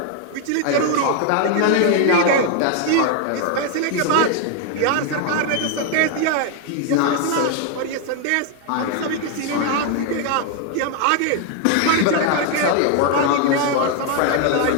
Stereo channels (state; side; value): different; both; correlation 0.00